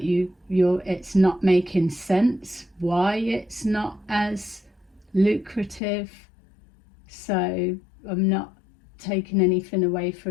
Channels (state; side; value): drops out; right; at 5.8 s